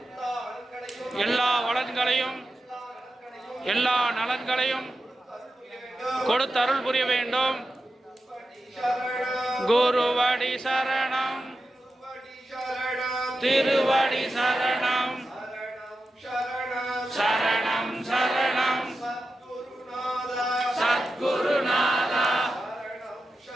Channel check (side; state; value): both; normal; correlation 0.90